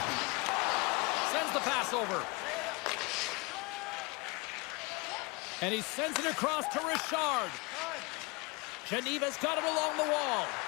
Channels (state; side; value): quieter; right; 27.5 dB